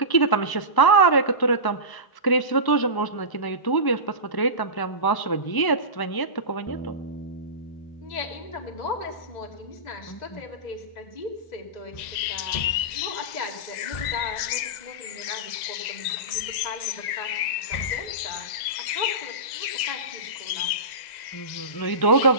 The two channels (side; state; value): right; late; 1.9 ms